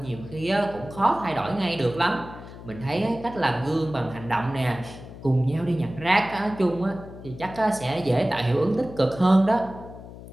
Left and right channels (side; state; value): left; noise; hum, 15 dB below the sound